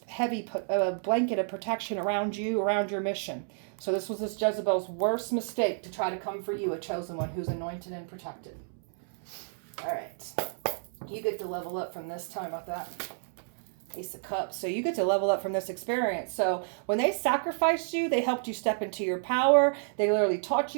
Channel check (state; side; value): silent; left; 58 dB below the other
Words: heavy blanket of protection around you, around your mission. So this was this Jezebel's worst mistake, to try to come for you, a chosen one who's anointed and protected. All right. You get to level up from this time with that Ace of Cups. So you get to level up from this experience. So when they sacrificed you, they helped you step into your power. They literally taught